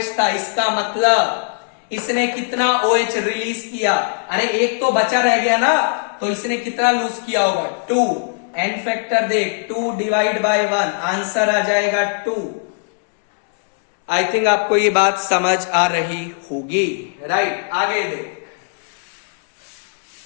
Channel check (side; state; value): right; silent; 66 dB below the other